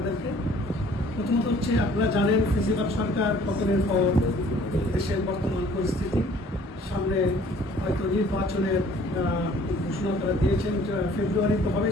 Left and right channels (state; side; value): normal; both; correlation 0.55